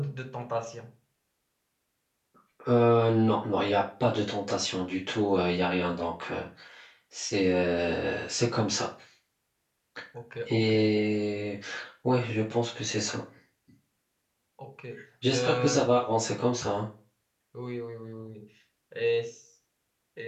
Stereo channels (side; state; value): both; identical; correlation 1.00